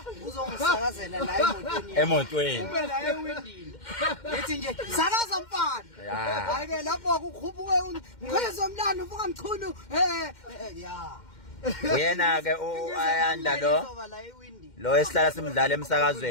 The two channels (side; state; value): right; late; 2.1 ms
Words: uzongisakazela la emotweni. Emotweni. Ube la ewindini. Ethi nje sakaza mfana. Ya. Hayi ke lapho kukhuphuke ngizwe umlando uvuka mchunu ya. Uyena ke ayanda lo. Izoba la ewindini. Lo esihlala simdlala